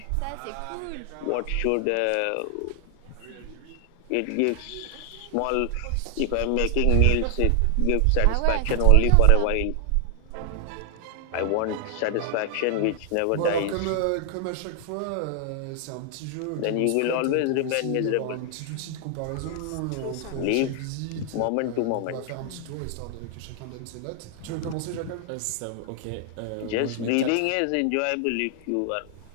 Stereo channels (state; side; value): different; both; correlation 0.00